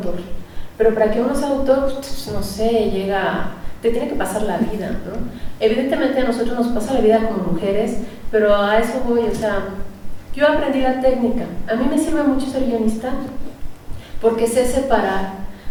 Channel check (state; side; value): identical; both; correlation 1.00